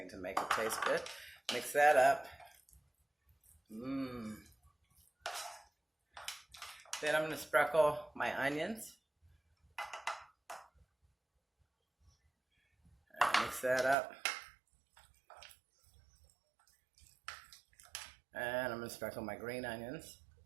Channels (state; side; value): drops out; left; at 14.0 s